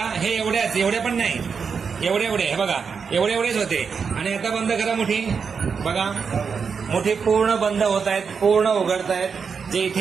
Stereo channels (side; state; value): left; quieter; 5.9 dB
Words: हे एवढ्या पण नाही एवढे हे बघा एवढेच होते. आणि आता बंद करा मुठी. बघा मुठी पूर्ण बंद होत आहेत पूर्ण उघडत आहेत. जे